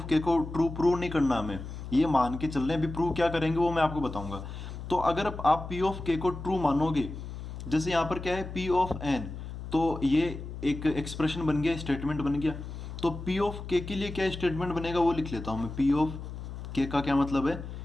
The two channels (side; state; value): left; noise; hum, 9 dB below the sound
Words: के को ट्रू प्रूव नहीं करना हमें, ये मान के चल रहे हैं। अभी प्रूव क्या करेंगे वो मैं आपको बताऊंगा। तो अगर आप पी ऑफ के को ट्रू मानोगे, जैसे यहाँ पर क्या है? पी ऑफ एन, तो ये एक एक्सप्रेशन बन गया, स्टेटमेंट बन गया। तो पी ऑफ के लिए क्या स्टेटमेंट बनेगा वो लिख लेता हूँ मैं। पी ऑफ के का क्या मतलब है?